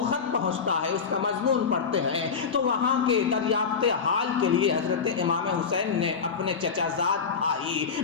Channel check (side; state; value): right; quieter; 5.9 dB